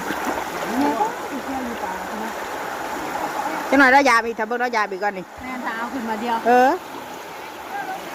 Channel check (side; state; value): both; identical; correlation 1.00